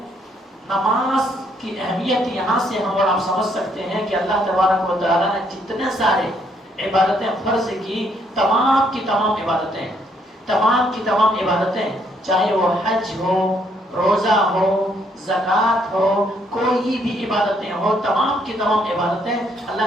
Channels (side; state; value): both; normal; correlation 0.70